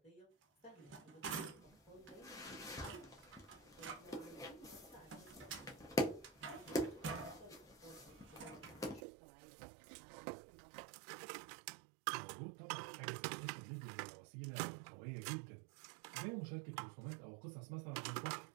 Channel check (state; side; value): drops out; left; at 9.1 s